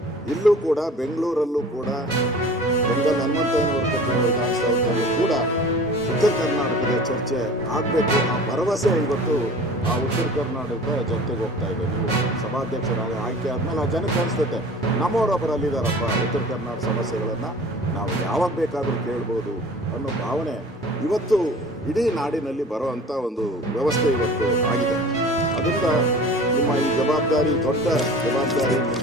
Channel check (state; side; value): normal; both; correlation 0.42